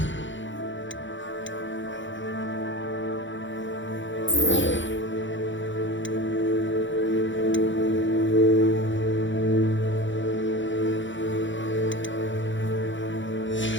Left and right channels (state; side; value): late; right; 0.55 ms